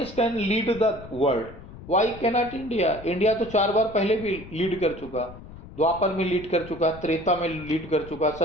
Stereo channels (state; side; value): noise; left; rumble, 16 dB below the sound